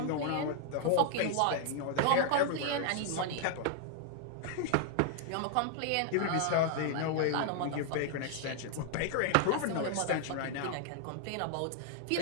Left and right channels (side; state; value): both; different; correlation 0.00